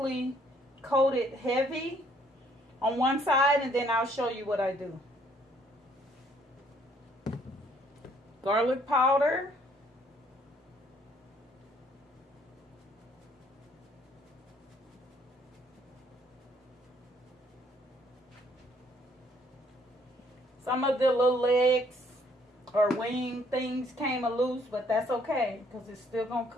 coat it heavy on one side, and then I'll show you what I do. Garlic powder. Some of the little legs or wing things came loose, but that's okay because it's still gonna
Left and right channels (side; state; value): both; normal; correlation 0.65